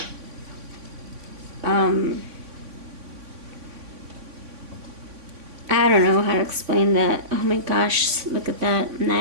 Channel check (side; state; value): left; late; 3.5 ms